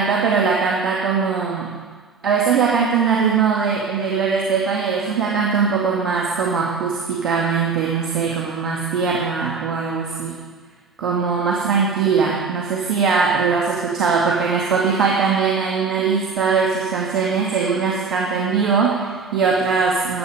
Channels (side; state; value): left; quieter; 5.2 dB